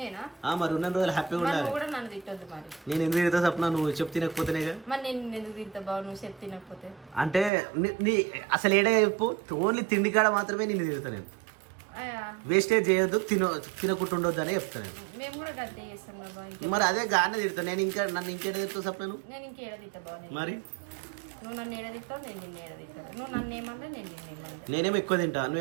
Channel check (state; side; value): drops out; left; at 7.5 s